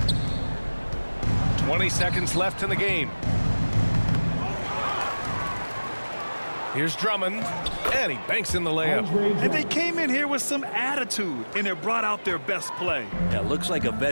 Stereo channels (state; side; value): inverted; both; correlation -1.00